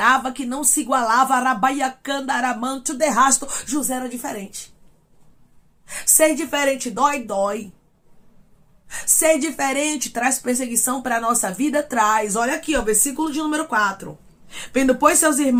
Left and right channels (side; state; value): both; identical; correlation 1.00